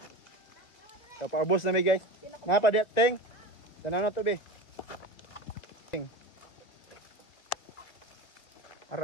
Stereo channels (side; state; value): right; late; 2.0 ms